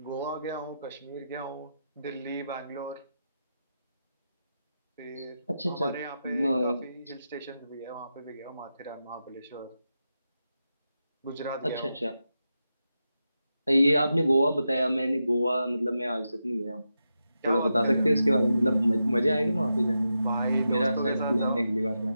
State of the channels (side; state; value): both; inverted; correlation -0.88